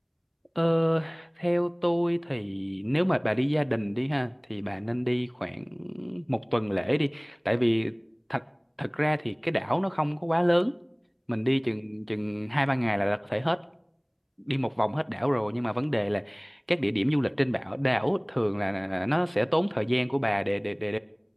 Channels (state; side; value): identical; both; correlation 1.00